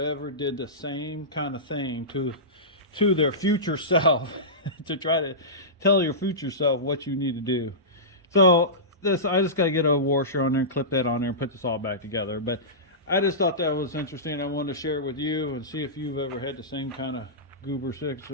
did the same kind of thing to their future self to try to tell your future self what you need to do. So I just got to get a washer on there and clip that on there and put this all back together. But I just thought that was interesting. I wanted to share it with you and see if you've ever had the same kind of goober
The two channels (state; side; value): normal; both; correlation -0.18